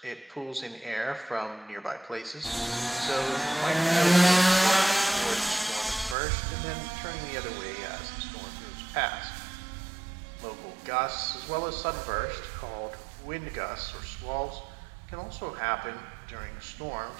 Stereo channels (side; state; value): left; drops out; at 6.2 s